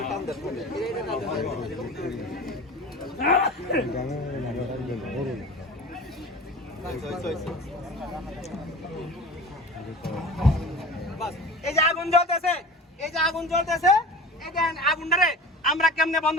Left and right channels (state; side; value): normal; both; correlation 0.36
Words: এই যে আগুন জ্বলতেছে, এই যে আগুন জ্বলতেছে, এই যে আগুনটারে আমরা কেমনে বন্ধ